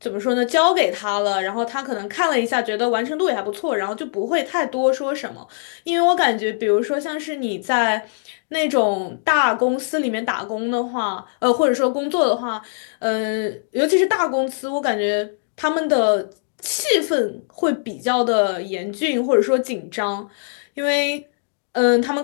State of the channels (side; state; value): right; silent; digital silence